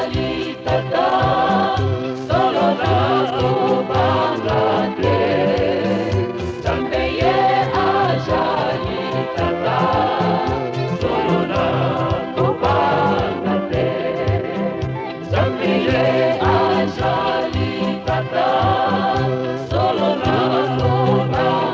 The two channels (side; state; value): both; identical; correlation 1.00